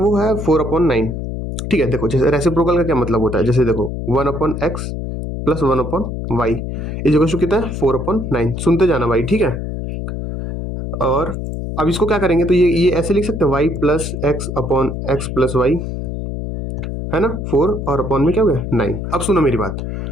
है 4/9। ठीक है, देखो जैसे रेसिप्रोकल का क्या मतलब होता है, जैसे देखो 1/x plus 1/y is equal to कितना है? 4/9। सुनते जाना भाई, ठीक है। और अब इसको क्या करेंगे, तो ये ऐसे लिख सकते हैं, y plus x upon x plus y, है ना। 4 और अपॉन में क्या हो गया? 9। अब सुनो मेरी बात।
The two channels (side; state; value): left; noise; hum, 5 dB below the sound